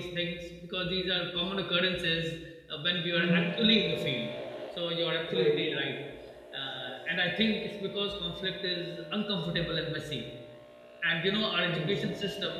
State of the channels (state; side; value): identical; both; correlation 1.00